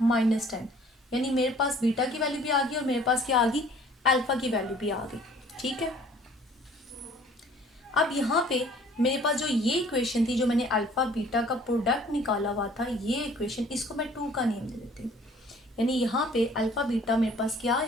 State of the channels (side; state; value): both; normal; correlation 0.54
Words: -10, यानी मेरे पास बीटा की वैल्यू भी आ गई और मेरे पास क्या आ गई अल्फा की वैल्यू भी आ गई। ठीक है, अब यहाँ पे मेरे पास जो ये इक्वेशन थी जो मैंने अल्फा बीटा का प्रोडक्ट निकाला हुआ था, ये इक्वेशन इसको मैं 2 का नेम दे देती हूँ। यानी यहाँ पे अल्फा बीटा मेरे पास क्या